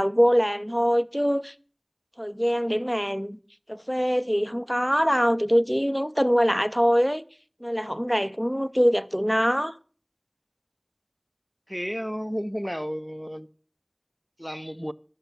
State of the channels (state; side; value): identical; both; correlation 1.00